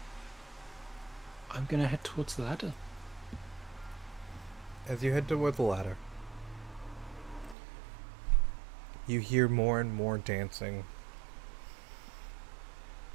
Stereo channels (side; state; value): left; drops out; at 7.6 s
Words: gonna head towards the ladder. As you head toward the ladder, you hear more and more dancing.